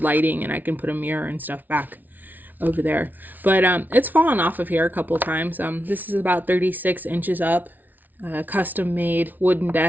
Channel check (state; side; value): late; left; 0.083 ms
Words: lighting and I can put a mirror and stuff back over there. But it's fallen off of here a couple times. This is about 36 inches up, custom made wooden